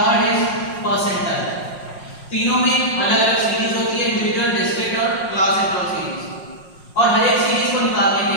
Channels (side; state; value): right; late; 5.5 ms